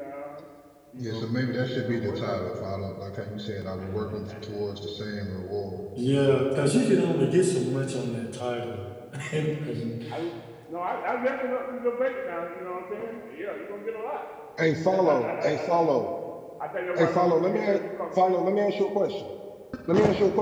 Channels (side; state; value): both; identical; correlation 1.00